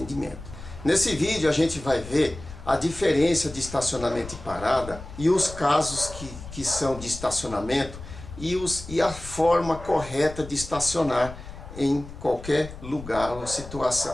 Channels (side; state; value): left; noise; rumble, 13 dB below the sound